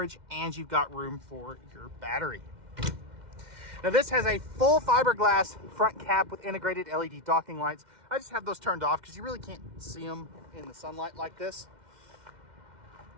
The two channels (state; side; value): late; left; 2.1 ms